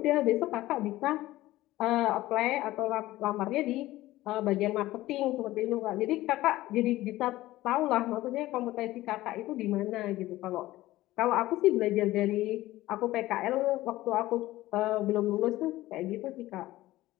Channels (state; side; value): quieter; right; 16.7 dB